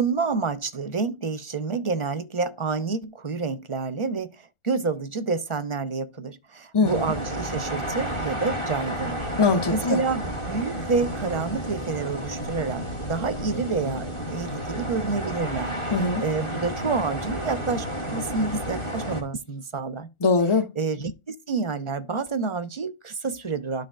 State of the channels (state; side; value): late; right; 1.4 ms